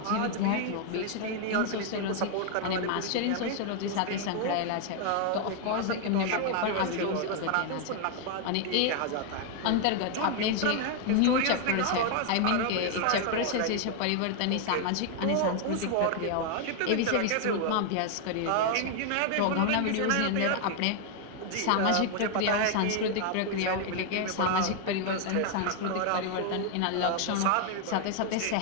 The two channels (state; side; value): different; both; correlation 0.00